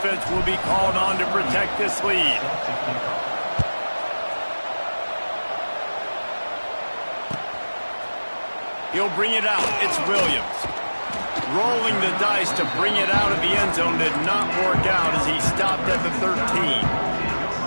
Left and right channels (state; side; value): inverted; both; correlation -1.00